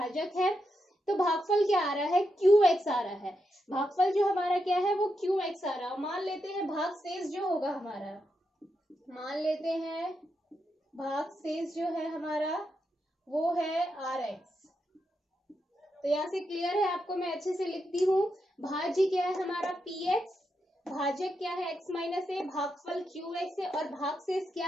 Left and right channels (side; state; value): both; normal; correlation 0.84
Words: है। तो भागफल क्या आ रहा है, qx आ रहा है। भागफल जो हमारा क्या है वो qx आ रहा है। मान लेते हैं भागशेष जो होगा हमारा, मान लेते हैं भागशेष जो है हमारा वो है rx। तो यहाँ से क्लियर है आपको, मैं अच्छे से लिखती हूँ। भाज्य क्या है हमारा px, भाजक क्या है x माइनस ए, भागफल qx है, और भागशेष क्या